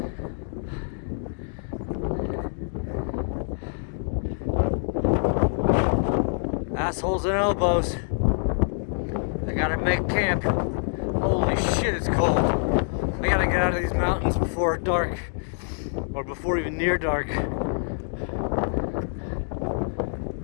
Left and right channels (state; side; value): silent; right; digital silence